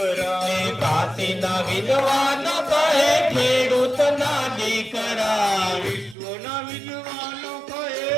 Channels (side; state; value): left; drops out; at 6.2 s